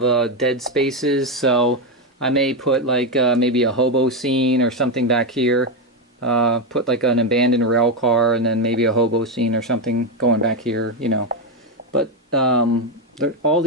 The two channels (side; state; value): both; normal; correlation 0.08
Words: dead spaces, so I may put like maybe a hobo scene or something back here. Put like an abandoned rail car, and then maybe a hobo scene or something going back here, you know. But all